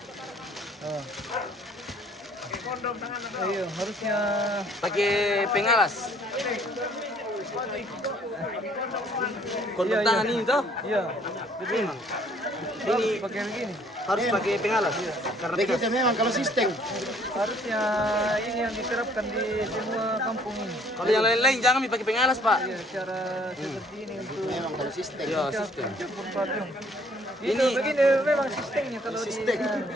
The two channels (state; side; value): normal; both; correlation 0.59